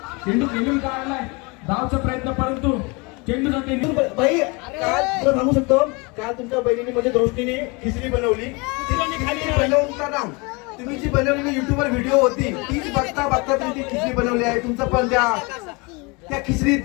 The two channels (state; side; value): quieter; right; 28.3 dB